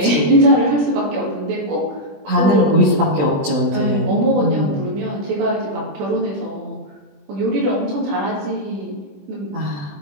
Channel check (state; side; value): late; left; 20 ms